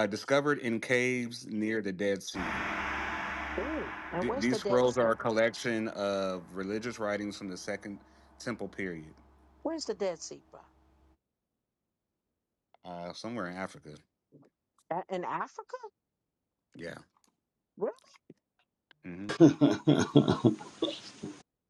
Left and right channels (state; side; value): identical; both; correlation 1.00